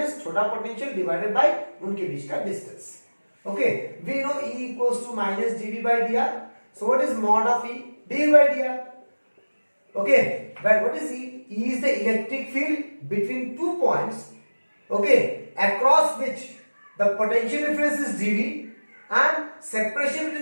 छोटा potential divided by उनके बीच का distance. Okay, we know E equals to minus dV by dr. So what is mod of E? dV by dr. Okay, but what is E? E is the electric field between 2 points, okay, across which the potential difference is dV and separation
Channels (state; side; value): inverted; both; correlation -1.00